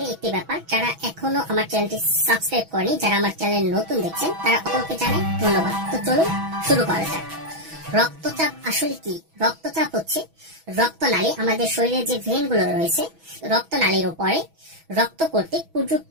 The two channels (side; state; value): left; late; 6.1 ms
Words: একটি ব্যাপার, যারা এখনো আমার চ্যানেলটি সাবস্ক্রাইব করেনি, যারা আমার চ্যানেল নতুন দেখছেন তারা অপরকে জানাই ধন্যবাদ। তো চলুন শুরু করা যাক। রক্তচাপ আসলে কি? রক্তচাপ হচ্ছে রক্তনালী, আমাদের শরীরে যে ভেনগুলো রয়েছে রক্তনালীর উপরে রক্ত কর্তৃক